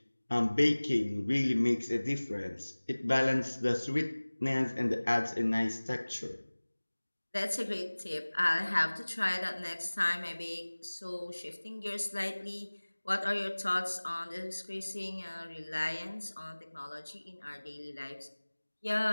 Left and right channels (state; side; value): inverted; both; correlation -1.00